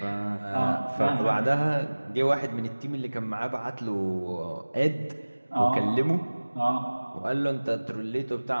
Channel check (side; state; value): both; inverted; correlation -1.00